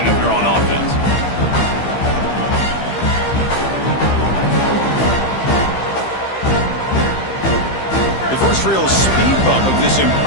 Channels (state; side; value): late; right; 15 ms